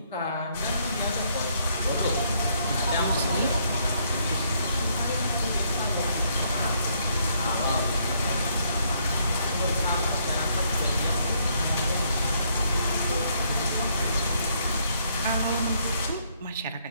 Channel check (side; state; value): both; inverted; correlation -0.71